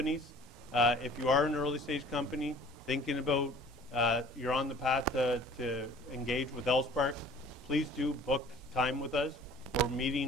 If you are an early stage company thinking about you're on the path to engage with LSpark, please do book time with us. We're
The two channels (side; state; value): both; normal; correlation 0.50